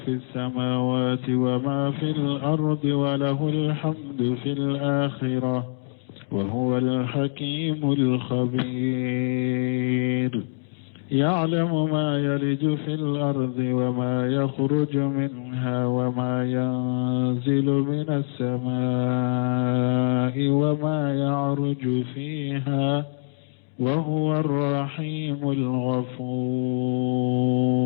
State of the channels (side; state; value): right; silent; digital silence